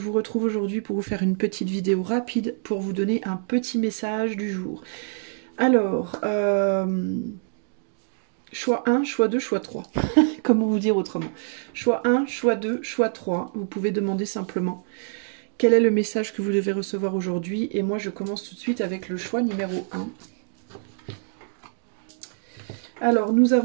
retrouve aujourd'hui pour vous faire une petite vidéo rapide pour vous donner un petit message du jour. Alors, choix 1, choix 2, choix 3. Comment vous dire autrement? Choix 1, choix 2, choix 3. Vous pouvez demander simplement quel est le message que vous devez recevoir aujourd'hui. Et moi, je commence tout de suite avec le choix numéro 1. Alors, nous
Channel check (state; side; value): silent; left; digital silence